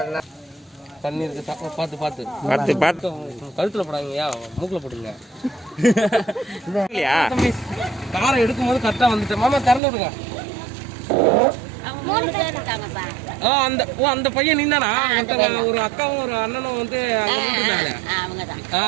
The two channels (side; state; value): left; drops out; at 9.8 s